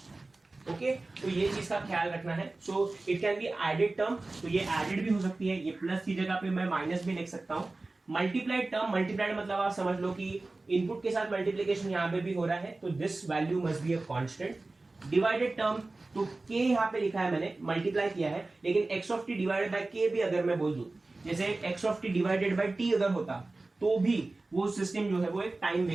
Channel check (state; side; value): quieter; left; 3.2 dB